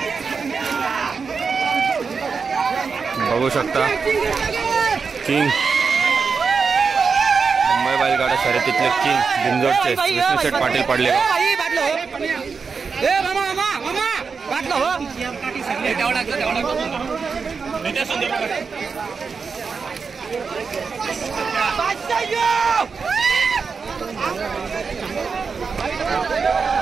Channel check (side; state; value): left; quieter; 5.3 dB